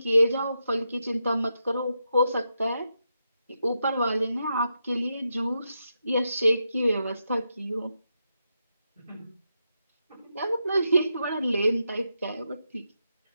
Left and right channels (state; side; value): inverted; both; correlation -0.85